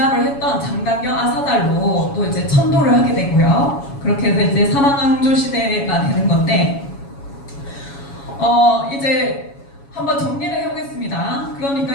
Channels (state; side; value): late; right; 7.2 ms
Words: 했던 장단경 아사달로 또 이제 천도를 하게 되고요. 그렇게 해서 이제 사망왕조 시대가 되는 건데, 이제 한번 정리를 해보겠습니다.